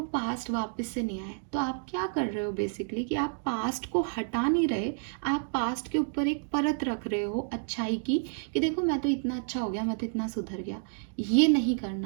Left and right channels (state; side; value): silent; left; digital silence